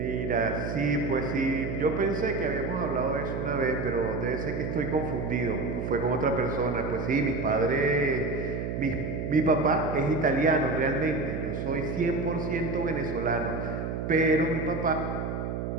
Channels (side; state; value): right; noise; hum, 3 dB below the sound